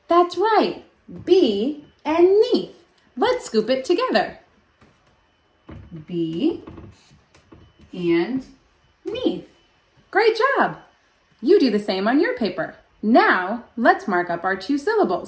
That's right. B and neath. Let's scoop it together. B and neath. Great job. You do the same on your paper. Now, let's mark up our 2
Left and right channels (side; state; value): both; identical; correlation 1.00